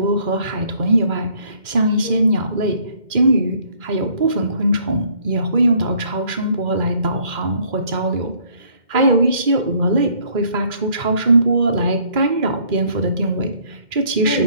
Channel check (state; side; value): late; left; 2.1 ms